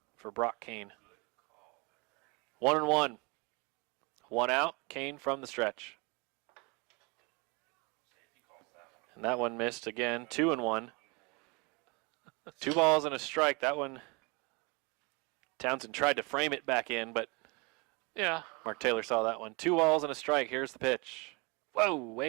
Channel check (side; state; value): left; quieter; 29.1 dB